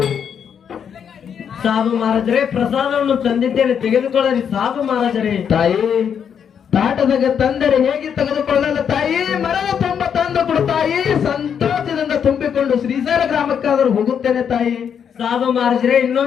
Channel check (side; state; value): right; quieter; 7.8 dB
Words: ಸಾಧು ಮಹಾರಾಜರೇ ಪ್ರಸಾದವನ್ನು ತಂದಿದ್ದೇನೆ ತೆಗೆದುಕೊಳ್ಳರಿ ಸಾಧು ಮಹಾರಾಜರೇ ತಾಯಿ ತಾಟದಾಗ ತಂದರೆ ಹೇಗೆ ತೆಗೆದುಕೊಳ್ಳಲು ತಾಯಿ ಮರದ ತುಂಬ ತಂದು ಕೊಡು ತಾಯಿ ಸಂತೋಷದಿಂದ ತುಂಬಿಕೊಂಡು ಶ್ರೀಶೈಲ ಗ್ರಾಮಕ್ಕಾದರೂ ಹೋಗುತ್ತೇನೆ ತಾಯಿ ಸಾಧು ಮಹಾರಾಜರೇ